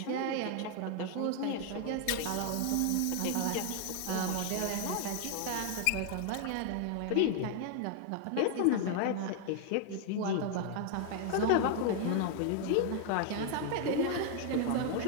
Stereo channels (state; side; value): different; both; correlation 0.00